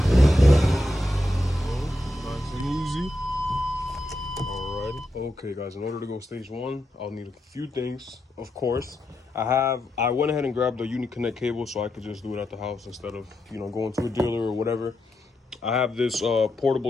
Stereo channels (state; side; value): normal; both; correlation 0.85